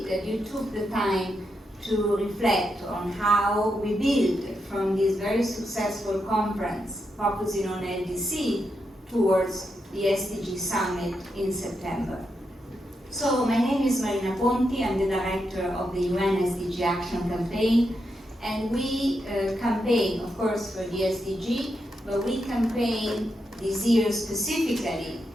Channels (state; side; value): normal; both; correlation 0.84